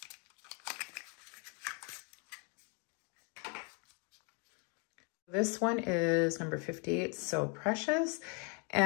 This one is number 58, So Precious.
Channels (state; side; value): quieter; right; 35.5 dB